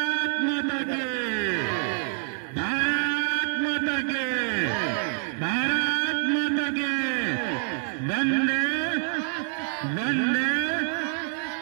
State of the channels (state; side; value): silent; left; 60 dB below the other